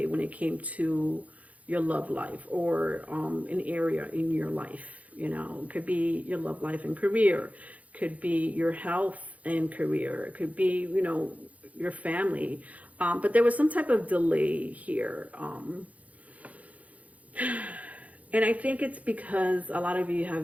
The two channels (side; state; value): left; late; 0.070 ms